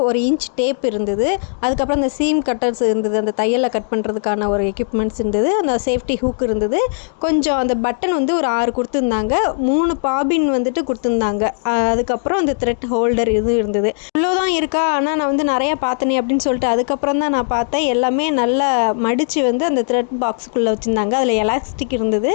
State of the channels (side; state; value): right; silent; digital silence